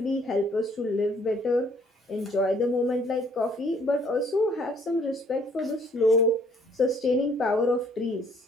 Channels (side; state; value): both; normal; correlation 0.61